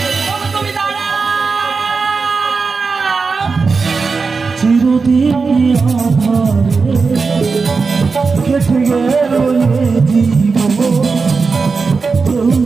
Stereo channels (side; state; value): left; quieter; 4.6 dB